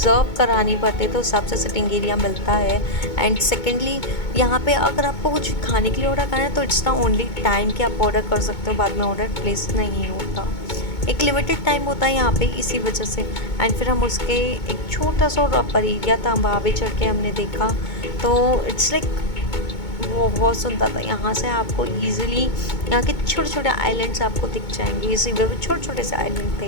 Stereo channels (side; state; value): right; late; 2.2 ms